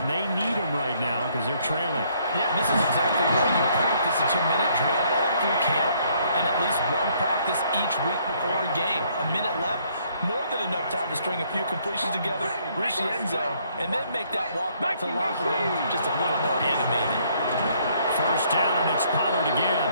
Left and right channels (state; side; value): inverted; both; correlation -0.67